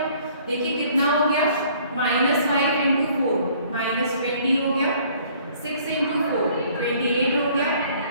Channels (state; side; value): inverted; both; correlation -0.57